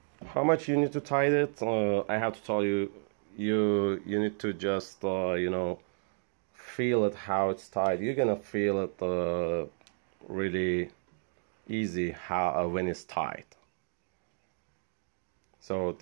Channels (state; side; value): silent; left; digital silence